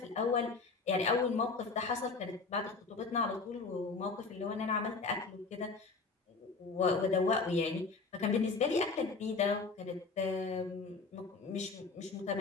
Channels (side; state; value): right; quieter; 4.2 dB